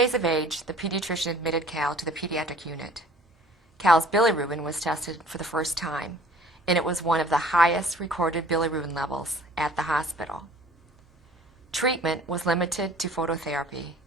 of age, the pediatrician admitted Cal to the pediatric unit. Cal's bilirubin was tested for the first time, and it was one of the highest recorded bilirubin levels at the hospital. Treatment was limited to phototherapy.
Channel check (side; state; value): both; normal; correlation 0.51